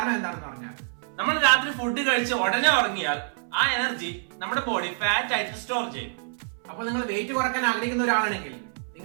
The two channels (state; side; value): silent; left; 61 dB below the other